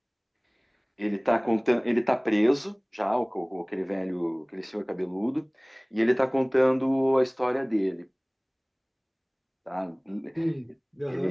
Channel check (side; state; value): both; identical; correlation 1.00